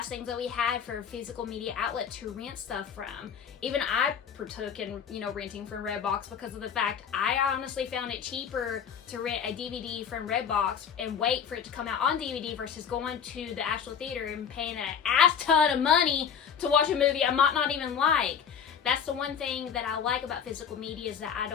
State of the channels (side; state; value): right; quieter; 7.5 dB